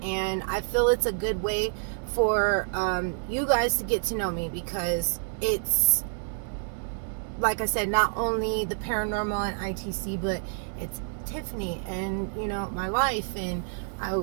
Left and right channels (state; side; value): silent; left; digital silence